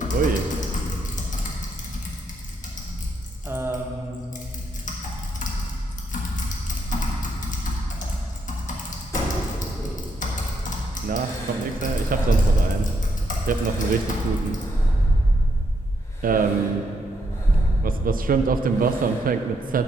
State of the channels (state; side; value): normal; both; correlation 0.77